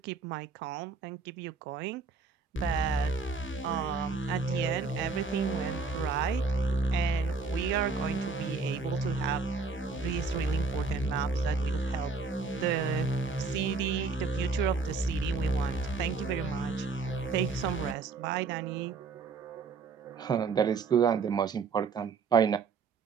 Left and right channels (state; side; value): quieter; left; 4.5 dB